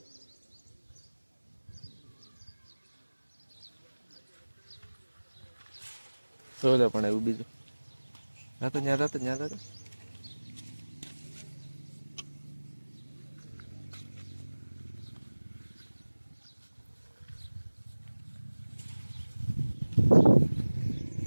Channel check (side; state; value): both; inverted; correlation -1.00